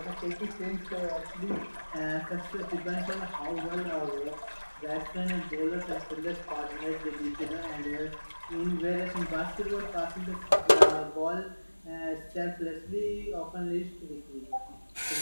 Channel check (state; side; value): inverted; both; correlation -1.00